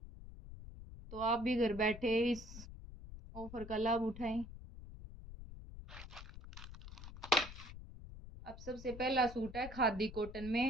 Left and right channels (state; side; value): noise; left; rumble, 13 dB below the sound